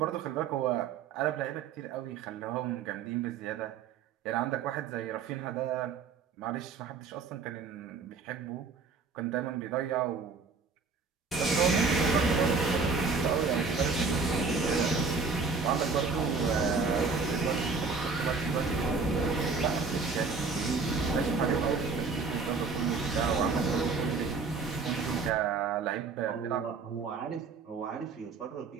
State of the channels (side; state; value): left; quieter; 4.8 dB